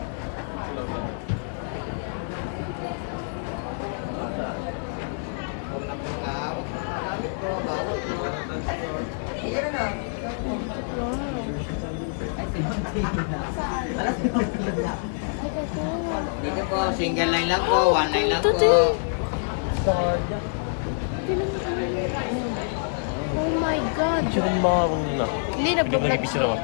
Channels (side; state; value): right; silent; digital silence